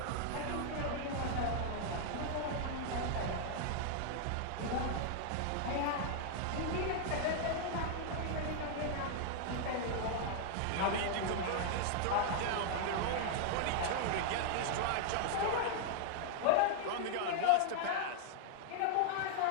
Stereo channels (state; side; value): different; both; correlation -0.01